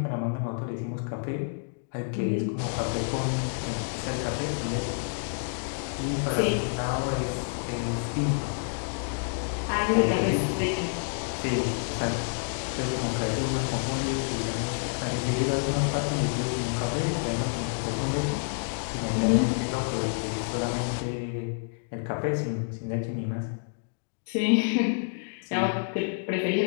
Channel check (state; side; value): silent; right; digital silence